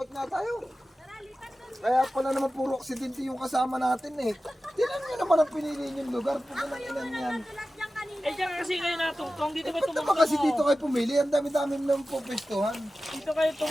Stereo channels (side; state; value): both; normal; correlation 0.95